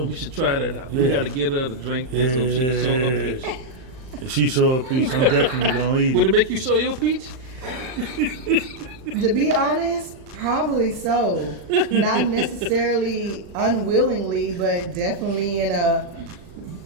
We should try that out. We Yeah. gotta get her to drink this so she can show her peach. If she show a peach, I'm definitely gonna eat Would it. it make you show your peach? To be honest, probably so. Not necessarily unwillingly, but definitely in a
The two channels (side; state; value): left; late; 38 ms